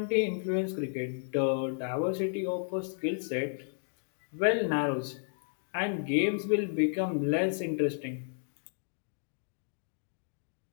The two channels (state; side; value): silent; right; digital silence